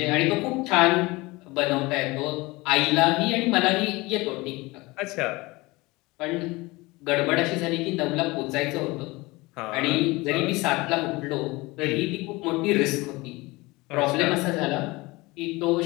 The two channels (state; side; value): quieter; right; 22.5 dB